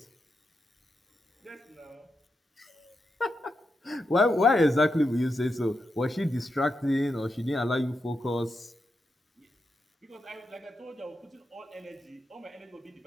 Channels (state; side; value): normal; both; correlation 0.86